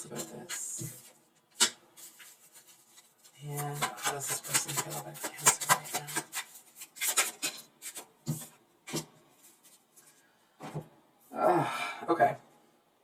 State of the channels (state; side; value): identical; both; correlation 1.00